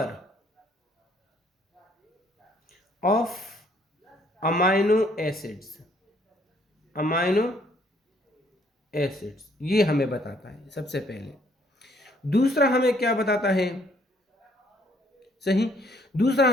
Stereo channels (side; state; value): both; normal; correlation 0.65